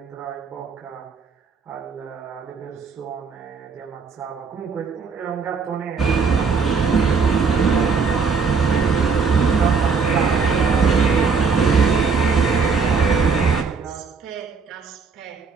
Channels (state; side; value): quieter; left; 5.1 dB